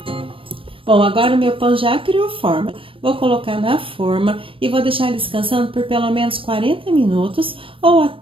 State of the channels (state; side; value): late; left; 0.26 ms